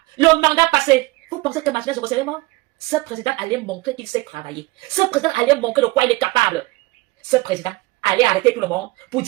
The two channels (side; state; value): left; quieter; 21.9 dB